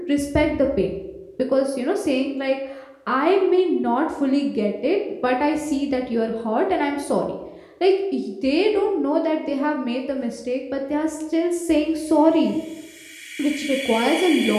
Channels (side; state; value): both; identical; correlation 1.00